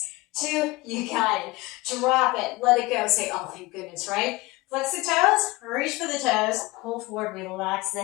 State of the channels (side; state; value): right; quieter; 21.9 dB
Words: 2. You got it. Drop it. Let it go. Say, oh, thank goodness, right? Flex the toes. Reach for the toes. Pull forward. Relax the